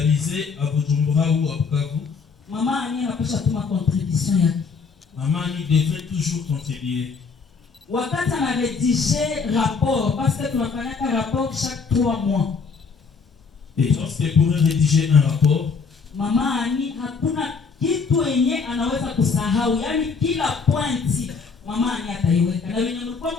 à Bujumbura ou à Bukavu, mama Annie anapaswa tuma contribution yake. Maman Annie devait toujours contribuer. Wakati anaredige rapport, parce que tunafanyaka rapport chaque 3 mois. Et lorsqu'elle pourrait rédiger un rapport, mama Annie hakuna kitu yenye anaweza kusahau, yani kila pointi mama Annie ataiweka, na wenye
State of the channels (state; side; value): quieter; right; 5.1 dB